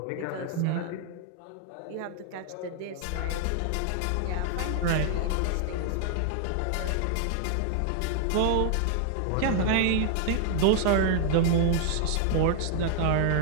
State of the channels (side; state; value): both; different; correlation 0.00